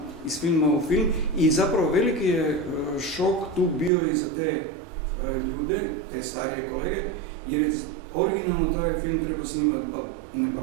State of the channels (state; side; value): drops out; left; at 3.9 s